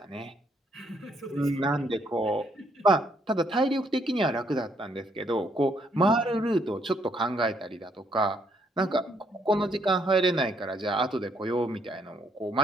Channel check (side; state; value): both; normal; correlation 0.71